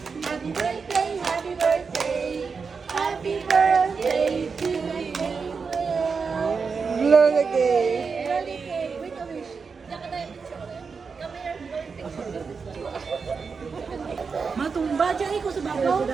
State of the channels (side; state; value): left; quieter; 5.2 dB